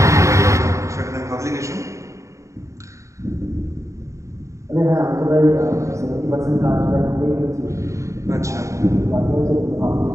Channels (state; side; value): late; left; 0.15 ms